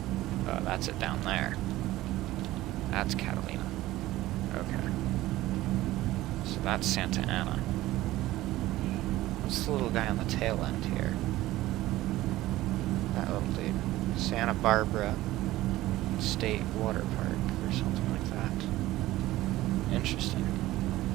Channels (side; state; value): left; quieter; 16.5 dB